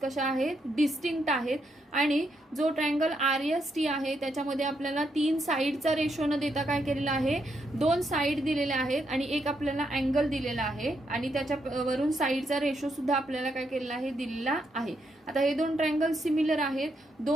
आहेत, डिस्टिंक्ट आहेत, आणि जो ट्रायंगल RST आहे त्याच्यामध्ये आपल्याला तीन साइडचा रेशो न देता काय केलेलं आहे, दोन साइड दिलेल्या आहेत आणि एक आपल्याला अँगल दिलेला आहे आणि त्याच्यावरून साइडचा रेशो सुद्धा आपल्याला काय केलेला आहे, दिलेला आहे. आता हे दोन ट्रायंगल सिमिलर आहेत,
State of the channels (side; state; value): both; normal; correlation 0.79